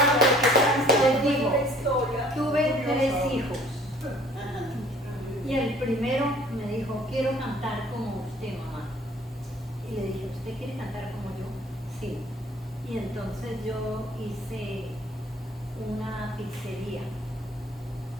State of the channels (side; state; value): both; normal; correlation 0.54